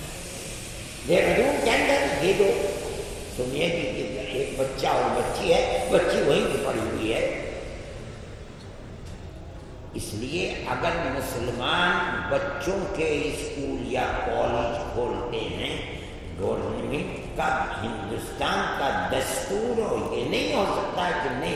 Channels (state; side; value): identical; both; correlation 1.00